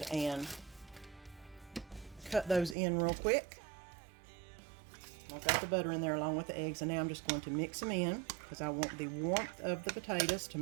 and cut those in real quick. I've got the butter in there along with the eggs, and now I'm just going to mix them in, because I want the warmth of the potatoes to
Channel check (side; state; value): left; drops out; at 2.8 s